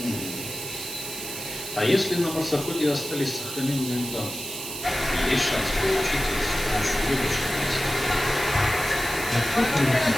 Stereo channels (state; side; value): noise; right; hiss, 8 dB below the sound